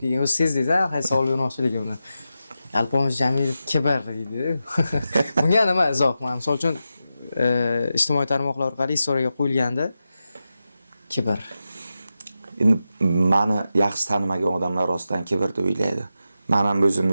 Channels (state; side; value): inverted; both; correlation -0.90